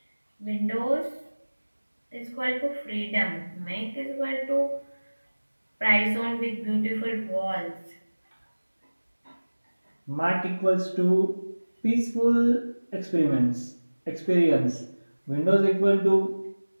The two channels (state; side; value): inverted; both; correlation -1.00